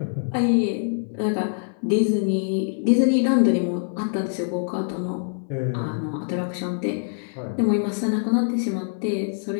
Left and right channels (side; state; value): right; silent; digital silence